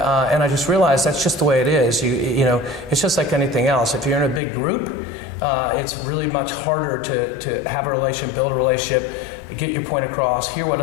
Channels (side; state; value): right; drops out; at 4.4 s